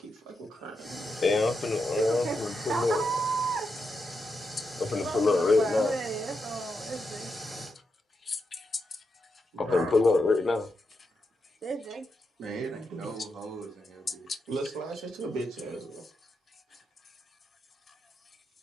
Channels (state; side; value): normal; both; correlation 0.85